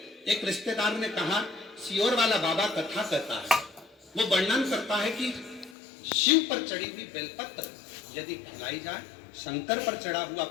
एक रिश्तेदार ने कहा सियोर वाला बाबा कथा कहता है, वो वर्णन करता है कि शिव पर चढ़ी हुई बेलपत्र यदि खिलाई जाए, शंकर पर चढ़ा हुआ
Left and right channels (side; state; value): right; drops out; at 5.8 s